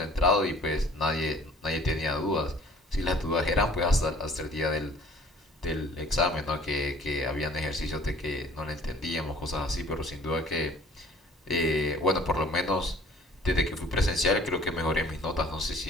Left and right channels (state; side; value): normal; both; correlation 0.52